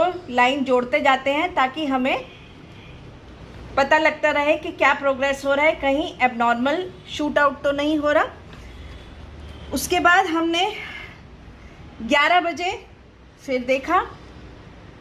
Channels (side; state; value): both; identical; correlation 1.00